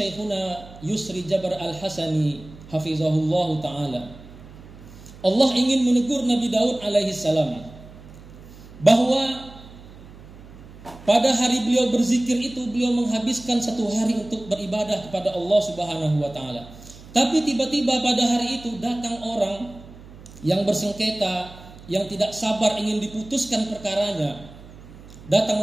Yusri Jabar Al-Hasani hafizahullahu ta'ala, Allah ingin menegur Nabi Daud alaihi salam bahwa pada hari beliau berzikir itu beliau menghabiskan 1 hari untuk beribadah kepada Allah Subhanahu wa taala. Tapi tiba-tiba pada hari itu datang orang yang bersengketa, yang tidak sabar ingin diputuskan perkaranya,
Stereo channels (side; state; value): right; noise; hum, 19 dB below the sound